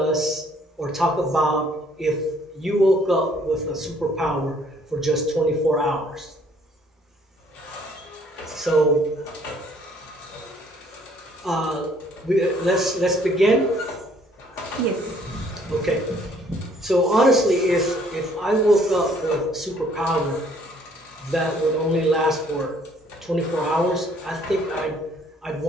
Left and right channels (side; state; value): both; normal; correlation 0.61